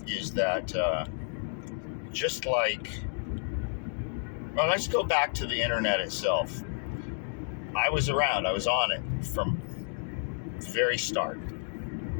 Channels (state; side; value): silent; right; digital silence